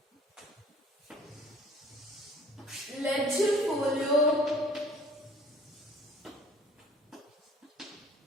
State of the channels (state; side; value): normal; both; correlation 0.51